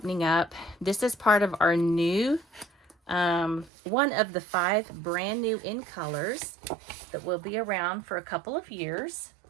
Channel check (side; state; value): left; drops out; at 3.7 s